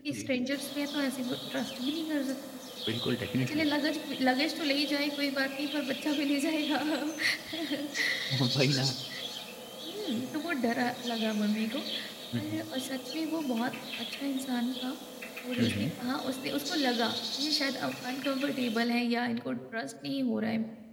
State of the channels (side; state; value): both; identical; correlation 1.00